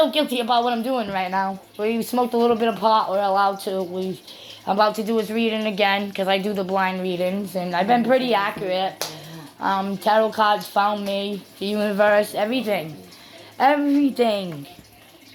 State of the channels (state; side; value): identical; both; correlation 1.00